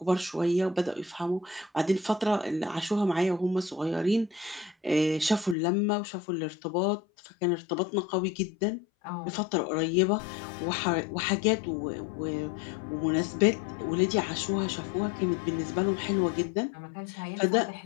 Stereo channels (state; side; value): drops out; right; at 5.6 s